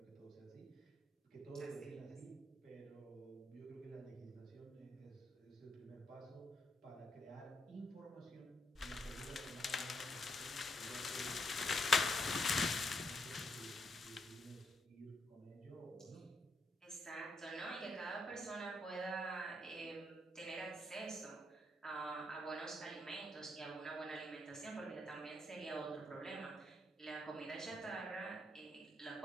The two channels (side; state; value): both; normal; correlation 0.77